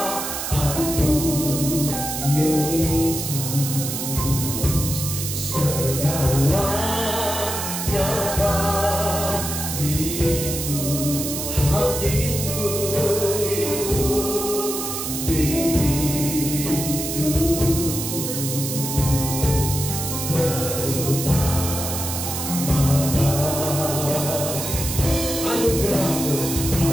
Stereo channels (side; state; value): right; noise; hiss, 4 dB below the sound